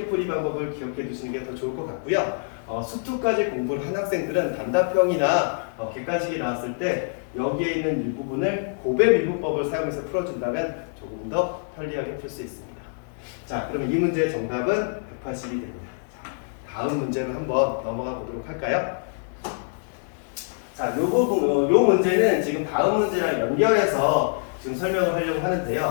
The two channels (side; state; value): right; silent; digital silence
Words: 풀이 방법을 기억해 두시는 게 더 좋을 것 같고요. 수투까지 공부를 한 학생들은 단답형이나 객관식이 나왔을 때 여기에 있는 일부분을 곱의 미분법을 사용해서 풀어준다면 조금 더 편리하게 풀 수 있습니다. 자, 그럼 이 문제의 정답은 180이 됩니다. 자, 다음 문제로 한번 넘어가 보도록 할까요? 자, 요 문제는 지금 다음 문제랑 연결해서 지금 설명을 하려고